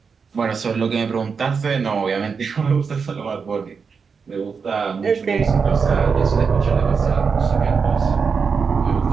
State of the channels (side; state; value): left; quieter; 5.6 dB